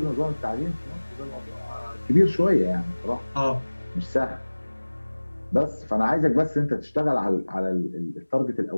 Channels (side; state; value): both; inverted; correlation -1.00